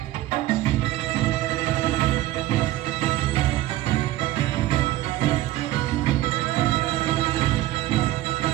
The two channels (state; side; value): quieter; left; 15.6 dB